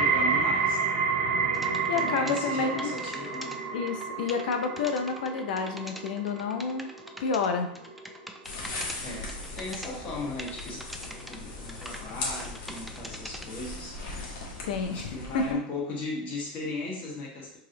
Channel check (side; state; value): both; normal; correlation 0.08